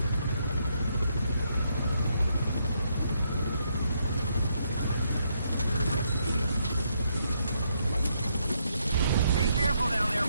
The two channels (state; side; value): inverted; both; correlation -0.76